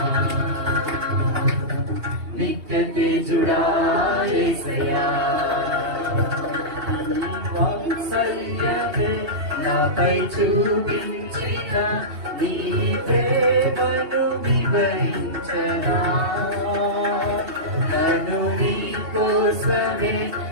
నిత్య తేజుడా యేసయ్యా వాత్సల్యమే నాపై చూపించిన నీ ప్రేమను వివరించనా నన్ను నీ కోసమే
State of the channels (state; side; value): late; left; 2.7 ms